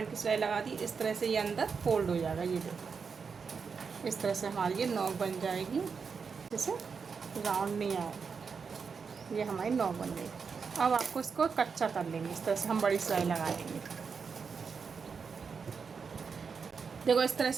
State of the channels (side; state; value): left; quieter; 5.6 dB